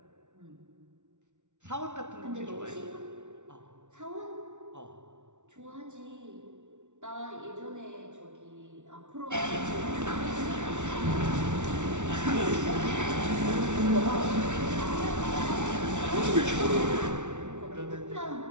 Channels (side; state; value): left; late; 0.85 ms